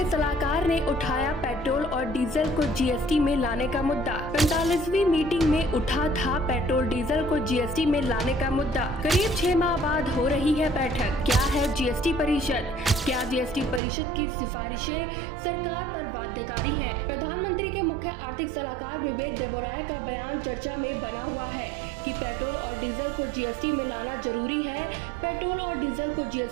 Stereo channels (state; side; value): drops out; left; at 13.8 s